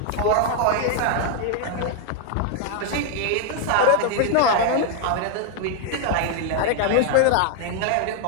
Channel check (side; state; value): both; different; correlation 0.00